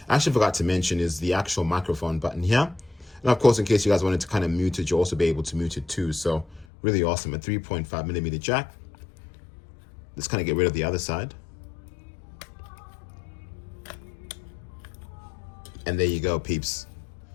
I actually forgot to mention is the actual microphone button here, and of course in case you guys wanted to kind of mute it, you'll also be able to mute it too. So really awesome. A 3.5mm jack. Let's kind of get rid of the other side, and there you go, peeps.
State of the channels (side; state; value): right; drops out; at 6.7 s